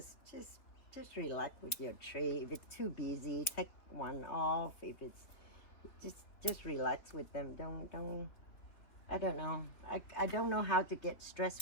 relax with your tree. If it's too busy, take one off. If it's just relax with them. Don't I don't know. I don't know how to get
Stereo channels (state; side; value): late; right; 3.6 ms